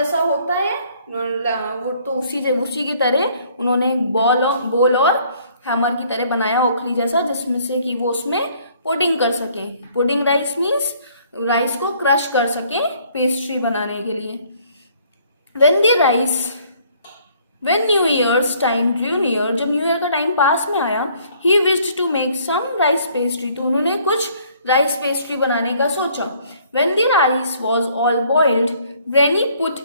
होता है, तो उसी की तरह उन्होंने एक बोल और हैमर की तरह बनाया ओखली जैसा, जिसमें से कि वो उसमें पोडिंग कर सके। पोडिंग राइस मीन्स राइस को क्रश कर सके पेस्ट्री बनाने के लिए। When New Year's time drew near, जब न्यू ईयर का टाइम पास में आया, he wished to make some rice pastry, तो उन्होंने कुछ राइस पेस्ट्री बनाने का सोचा। When the rice was all boiled, Granny put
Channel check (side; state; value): both; inverted; correlation -0.61